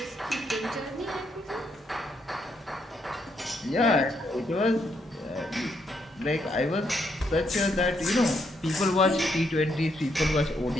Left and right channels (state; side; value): normal; both; correlation 0.76